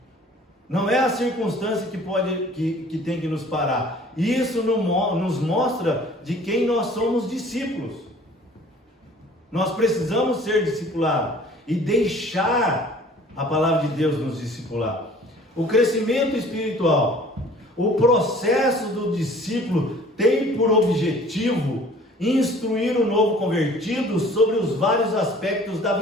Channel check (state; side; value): normal; both; correlation 0.50